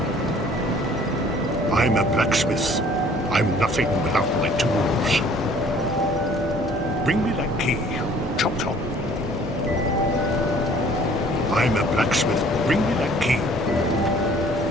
I'm a blacksmith. I'm nothing without my tools. Bring me that key. Chop chop. I'm a blacksmith. Bring me that key.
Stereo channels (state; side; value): normal; both; correlation 0.55